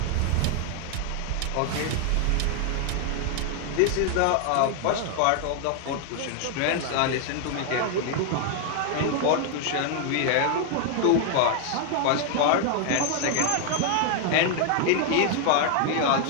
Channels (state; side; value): different; both; correlation 0.00